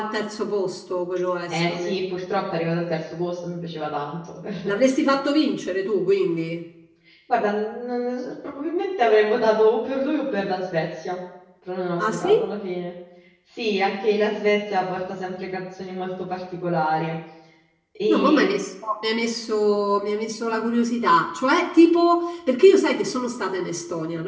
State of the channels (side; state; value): both; identical; correlation 1.00